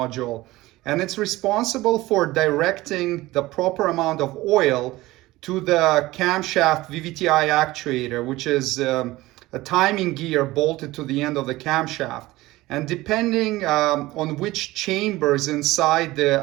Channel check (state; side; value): quieter; left; 18.5 dB